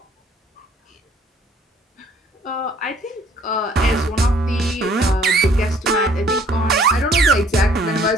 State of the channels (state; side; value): normal; both; correlation 0.59